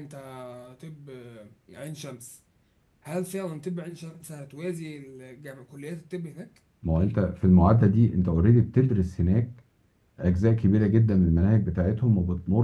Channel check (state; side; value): identical; both; correlation 1.00